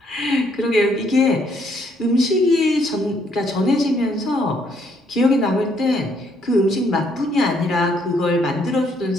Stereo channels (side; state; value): both; normal; correlation 0.70